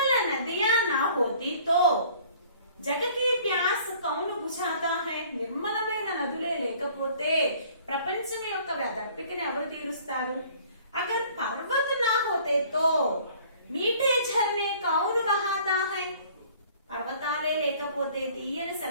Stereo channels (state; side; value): inverted; both; correlation -0.54